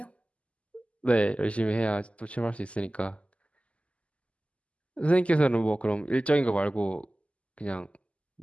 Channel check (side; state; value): right; late; 0.060 ms